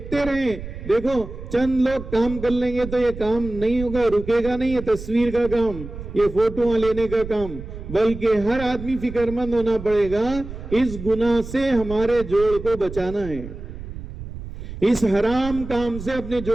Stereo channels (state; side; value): noise; right; rumble, 11 dB below the sound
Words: رہیں۔ دیکھو چند لوگ کام کر لیں گے تو یہ کام نہیں ہوگا، رکے گا نہیں، یہ تصویر کا کام، یہ فوٹوਆਂ لینے کا کام، بلکہ ہر آدمی فکر مند ہونا پڑے گا۔ اس گناہ سے ہمارے جوڑ کو بچانا ہے، اس حرام کام سے اپنے